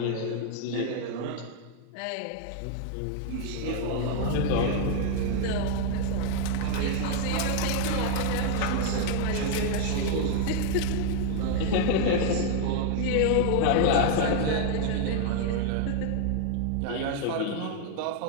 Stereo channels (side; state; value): both; different; correlation 0.00